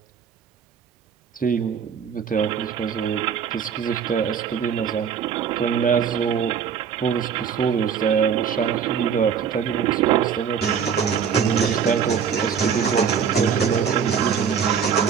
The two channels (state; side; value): quieter; left; 7.2 dB